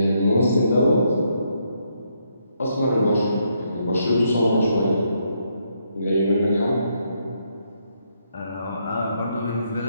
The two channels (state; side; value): inverted; both; correlation -0.76